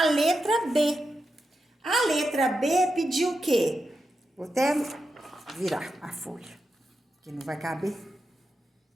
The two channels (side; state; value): both; normal; correlation 0.88